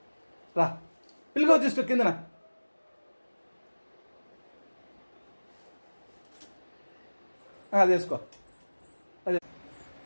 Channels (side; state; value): both; inverted; correlation -1.00